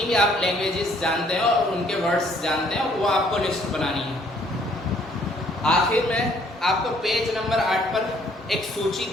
भी आप लैंग्वेजेस जानते हैं और उनके वर्ड्स जानते हैं वो आपको लिस्ट बनानी है। आखिर में आपको पेज नंबर 8 पर एक सूची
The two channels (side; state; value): both; normal; correlation 0.63